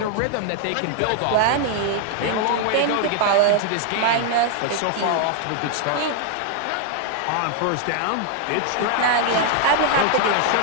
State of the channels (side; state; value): both; different; correlation 0.00